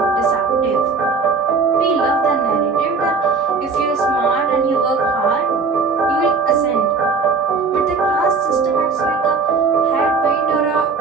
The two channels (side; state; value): left; quieter; 4.7 dB